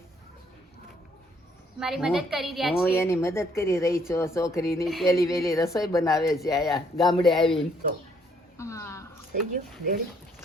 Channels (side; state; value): both; normal; correlation 0.67